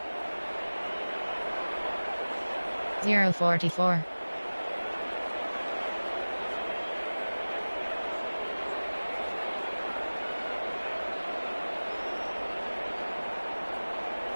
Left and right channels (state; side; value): inverted; both; correlation -1.00